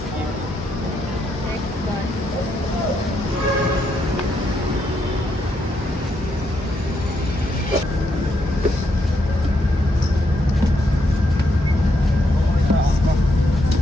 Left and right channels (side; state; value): both; normal; correlation 0.78